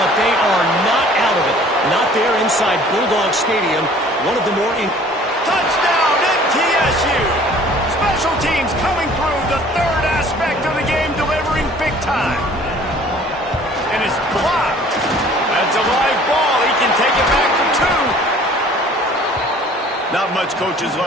they are not out of it. Not there inside Bulldog Stadium. One of the more... Touchdown, MTSU! Special teams coming through, the third aspect of the game, delivering big time. And it's blocked. That's a live ball. He can take it back for 2. Not much coaches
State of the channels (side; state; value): both; normal; correlation 0.52